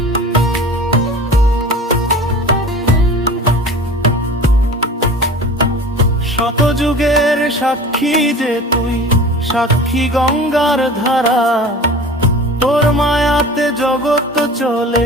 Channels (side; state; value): both; normal; correlation 0.39